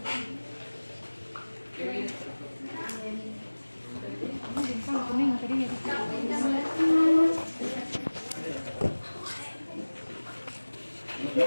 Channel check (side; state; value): both; inverted; correlation -1.00